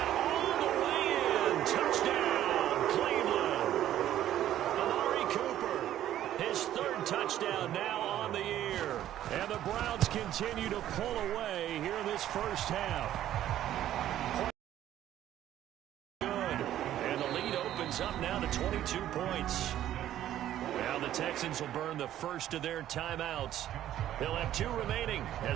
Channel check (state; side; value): quieter; left; 12.2 dB